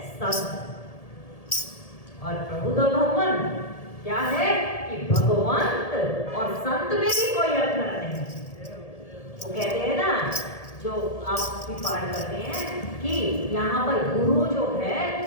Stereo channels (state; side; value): late; right; 1.7 ms